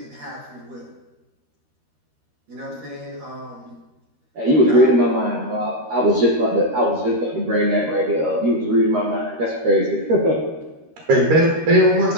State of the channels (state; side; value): late; left; 13 ms